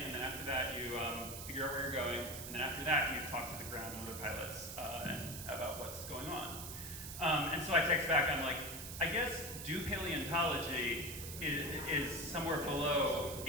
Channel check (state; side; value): noise; right; hiss, 8 dB below the sound